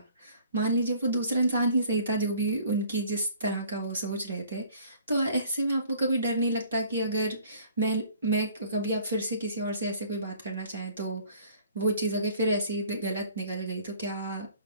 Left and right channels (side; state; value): both; inverted; correlation -0.53